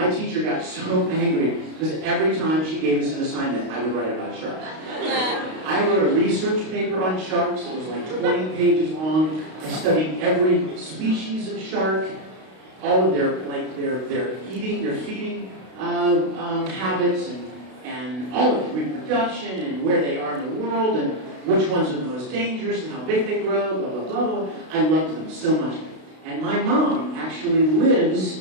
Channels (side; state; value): left; late; 32 ms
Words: teacher got so angry because every time she gave us an assignment, I would write about sharks. I wrote a research paper on sharks. It was like 20 pages long. I studied every species of shark, all of their eating, their feeding habits, and all of it, reproduction, and where they are in the world, and which ones are the most dangerous, and how big they grow, blah, blah, blah, blah. I loved them so much. And my mom actually